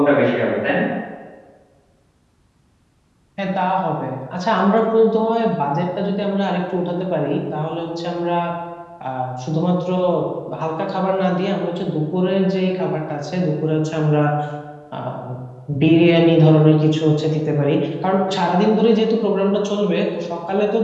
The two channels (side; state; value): both; identical; correlation 1.00